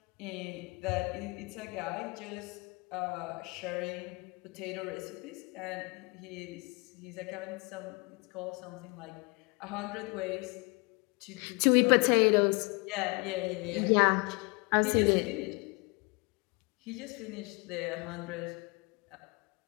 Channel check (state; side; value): quieter; right; 29.4 dB